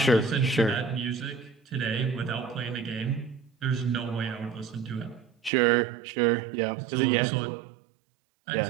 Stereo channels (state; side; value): drops out; left; at 5.5 s